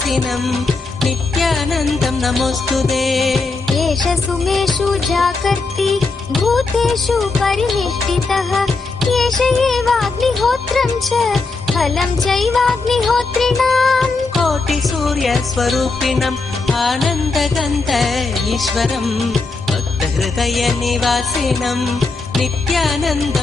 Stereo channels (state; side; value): quieter; right; 3.9 dB